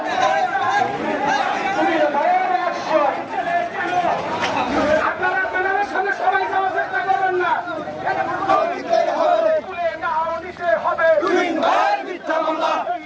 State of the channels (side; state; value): both; identical; correlation 1.00